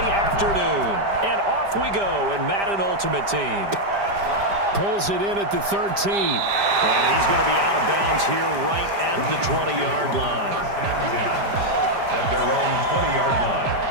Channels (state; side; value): late; left; 5.0 ms